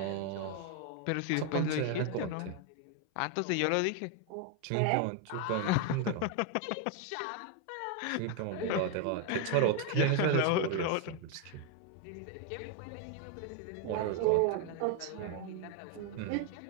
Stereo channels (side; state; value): both; different; correlation 0.01